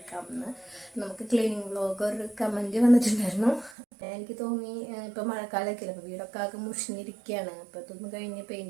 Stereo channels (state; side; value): drops out; left; at 3.8 s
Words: നമുക്ക് ക്ലീനിങ് വ്ലോഗ് ഒരു കമൻറ്റ് വന്നിട്ടുണ്ടായിരുന്നു. എനിക്ക് തോന്നി ഇപ്പോൾ മഴക്കാലമൊക്കെ അല്ലേ, അപ്പോൾ വീടൊക്കെ ആകെ മുഷിഞ്ഞിരിക്കുകയാണ്, അപ്പോൾ ഇതൊന്ന് കഴിഞ്ഞ്